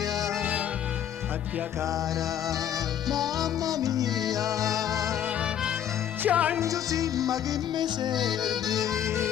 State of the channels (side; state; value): right; quieter; 10.1 dB